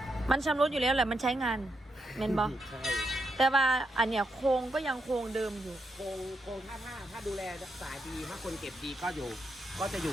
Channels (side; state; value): both; normal; correlation 0.82